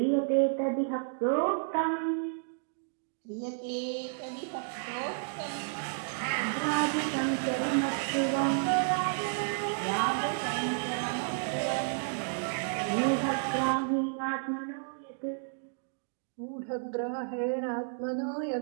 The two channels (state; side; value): silent; left; digital silence